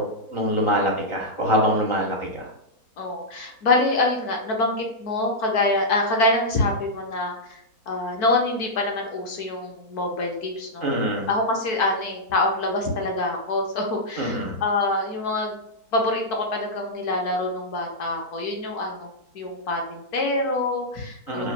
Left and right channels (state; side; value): late; right; 4.6 ms